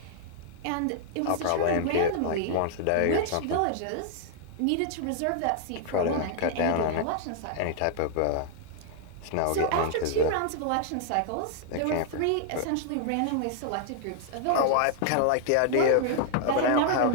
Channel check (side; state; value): both; different; correlation 0.00